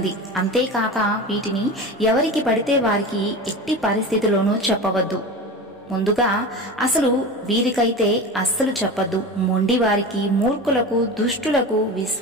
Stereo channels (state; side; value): normal; both; correlation 0.29